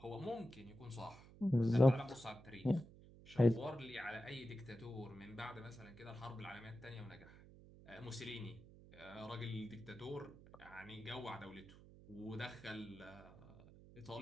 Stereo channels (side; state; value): right; noise; hum, 19 dB below the sound